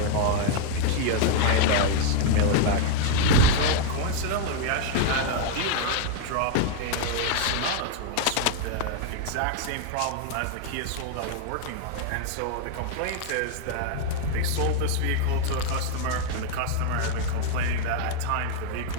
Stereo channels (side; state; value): both; different; correlation 0.00